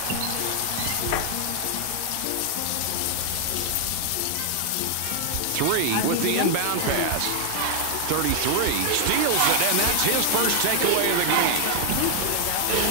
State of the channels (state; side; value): different; both; correlation 0.00